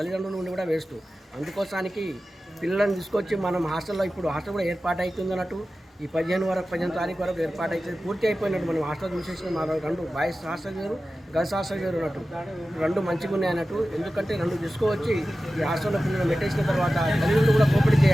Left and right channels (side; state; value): both; normal; correlation 0.94